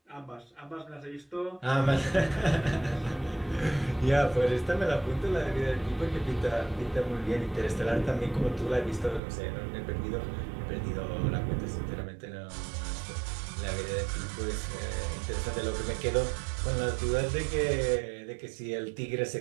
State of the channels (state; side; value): drops out; left; at 9.2 s